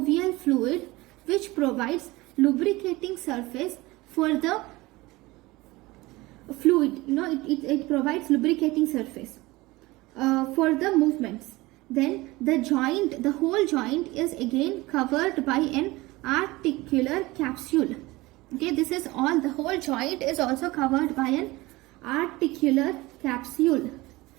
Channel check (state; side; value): quieter; left; 20.8 dB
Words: fluid which provides lubricating surface for the fluid, it provides lubricating surface for the movements. Then the whole joint is again covered by an articular capsule. Okay, this is all, the whole joint is also covered by an articular capsule.